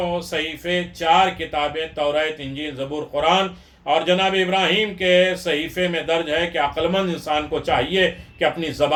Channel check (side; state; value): both; identical; correlation 1.00